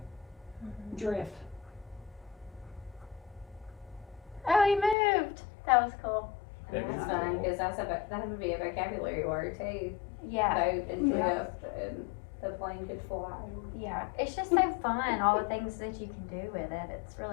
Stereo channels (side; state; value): right; drops out; at 5.0 s